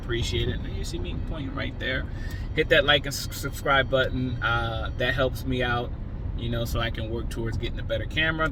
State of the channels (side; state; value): both; identical; correlation 1.00